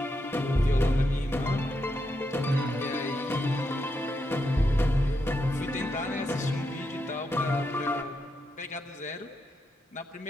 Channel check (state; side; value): normal; both; correlation 0.83